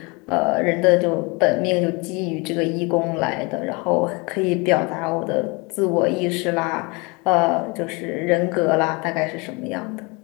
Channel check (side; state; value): right; quieter; 28.2 dB